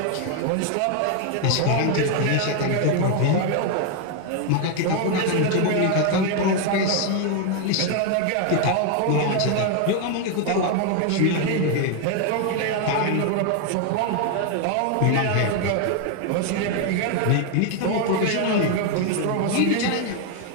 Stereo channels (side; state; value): both; different; correlation 0.01